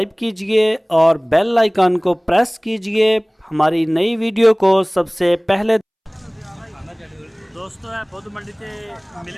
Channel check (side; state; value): both; identical; correlation 1.00